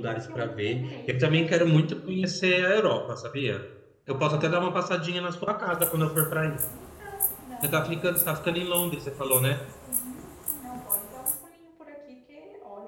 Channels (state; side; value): identical; both; correlation 1.00